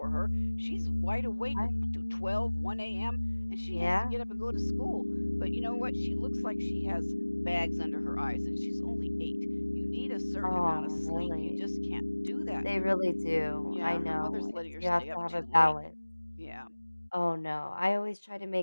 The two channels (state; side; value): inverted; both; correlation -1.00